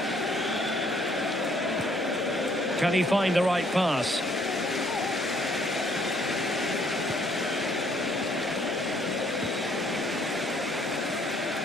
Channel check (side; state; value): both; normal; correlation 0.64